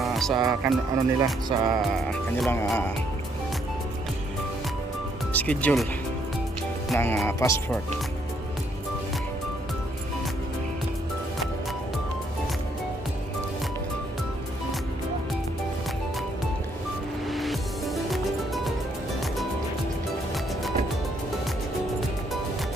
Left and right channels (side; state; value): both; normal; correlation 0.70